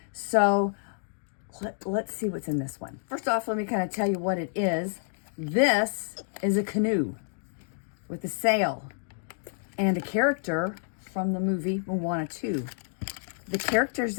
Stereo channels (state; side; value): silent; right; digital silence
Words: So let's see what's in this one. First off, let me kind of tell you what it is. This is a canoe with a sail and a character from the movie Moana 2. The characters